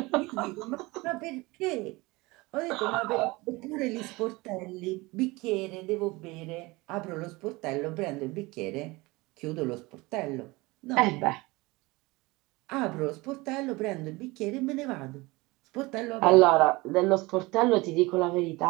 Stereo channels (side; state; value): left; quieter; 22.7 dB